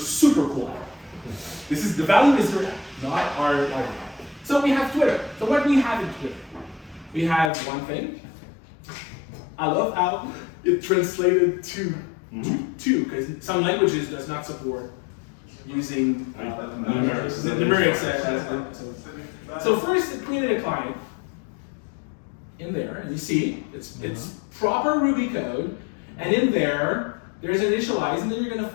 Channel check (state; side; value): drops out; right; at 7.5 s